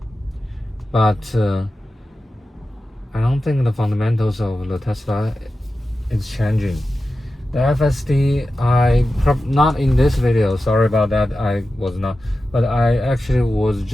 but I don't think the fundamentals of the Tesla is changing. The FSD, not in this video, sorry about that, I was not, but I actually was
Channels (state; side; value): normal; both; correlation 0.93